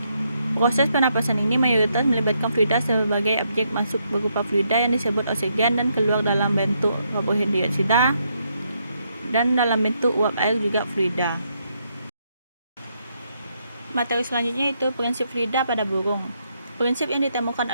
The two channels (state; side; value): inverted; both; correlation -0.77